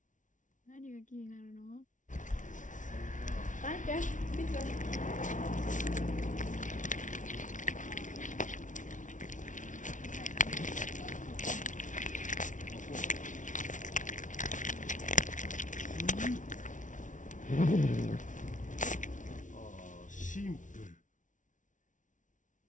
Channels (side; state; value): right; late; 0.37 ms